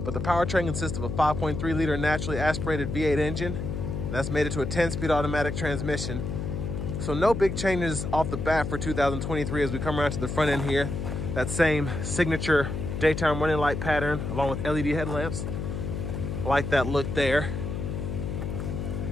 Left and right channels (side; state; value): left; noise; hum, 4 dB below the sound